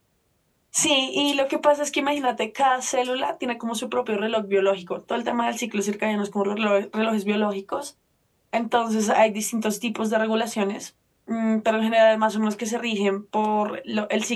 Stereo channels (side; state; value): both; identical; correlation 1.00